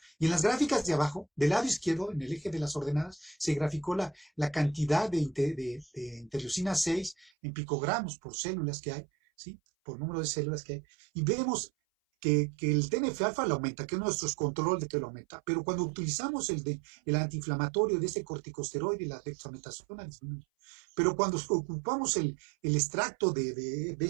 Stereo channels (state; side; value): drops out; left; at 7.3 s